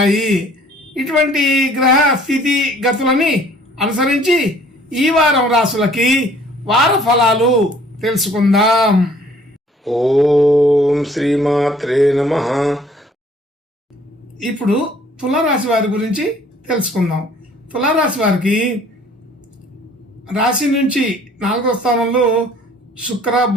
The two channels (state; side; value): normal; both; correlation 0.56